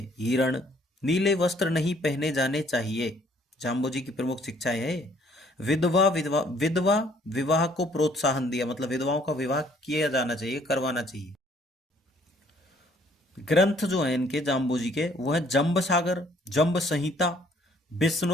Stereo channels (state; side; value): normal; both; correlation 0.62